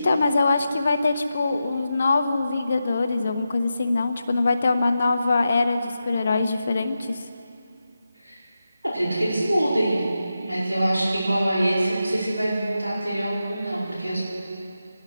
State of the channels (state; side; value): inverted; both; correlation -0.90